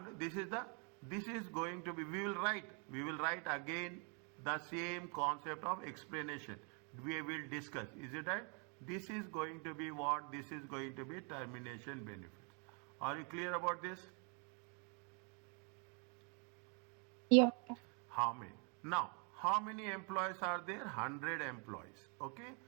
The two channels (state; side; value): quieter; left; 37.4 dB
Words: This is going to be, we will write again the same concept of explanation. We will discuss. Is it right? This is going to be what? This is going to be termination benefits. Are you clear about this? Yeah. How many? Now, how many employees are there? 100 employees. Okay.